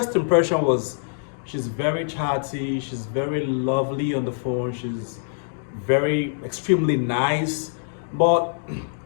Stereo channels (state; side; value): silent; right; digital silence